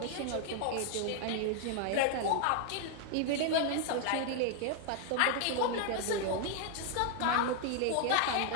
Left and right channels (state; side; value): different; both; correlation 0.00